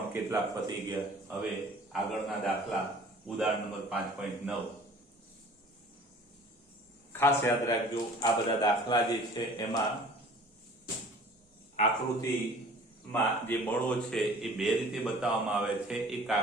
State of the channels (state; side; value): normal; both; correlation 0.48